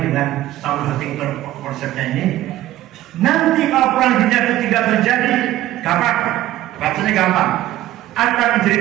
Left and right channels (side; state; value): left; quieter; 14.6 dB